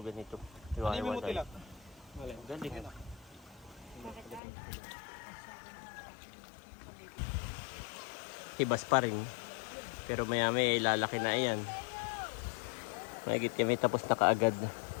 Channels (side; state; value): right; drops out; at 4.4 s